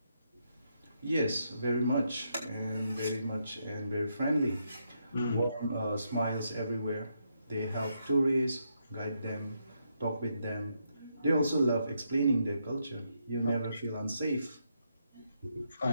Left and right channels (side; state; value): both; inverted; correlation -0.79